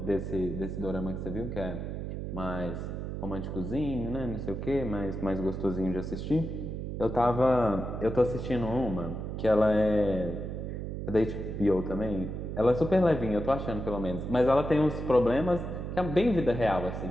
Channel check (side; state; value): right; noise; hum, 5 dB below the sound